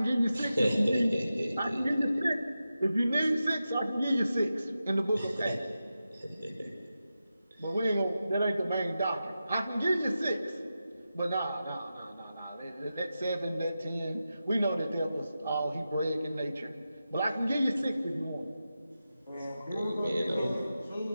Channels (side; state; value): both; inverted; correlation -0.91